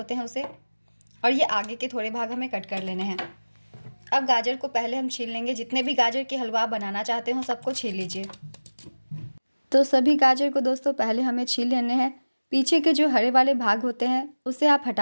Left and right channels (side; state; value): both; inverted; correlation -1.00